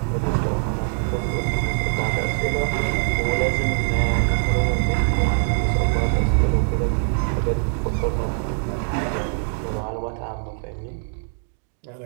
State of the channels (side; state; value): left; silent; digital silence